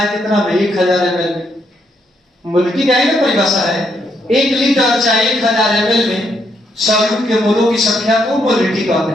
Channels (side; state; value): both; normal; correlation 0.76